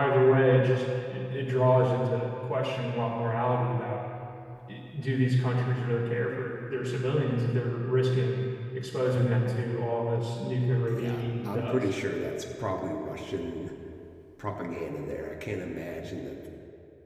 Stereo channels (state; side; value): identical; both; correlation 1.00